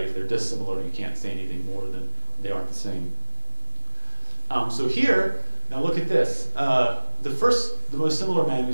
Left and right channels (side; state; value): both; inverted; correlation -1.00